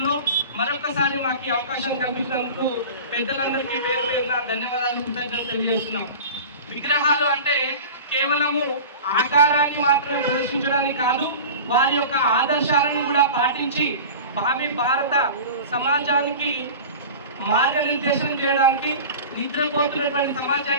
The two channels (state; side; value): inverted; both; correlation -0.35